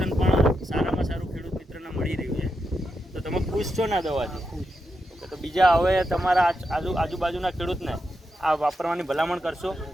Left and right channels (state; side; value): normal; both; correlation 0.85